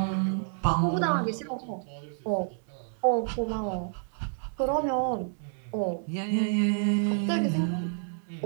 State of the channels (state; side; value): silent; left; digital silence